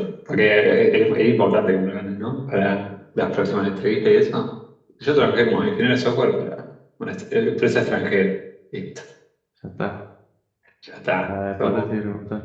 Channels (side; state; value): both; identical; correlation 1.00